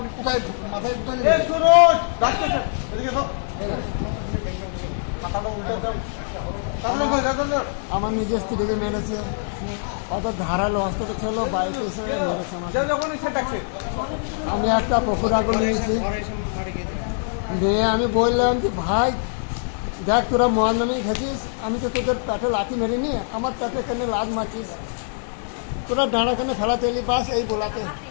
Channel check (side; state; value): right; silent; digital silence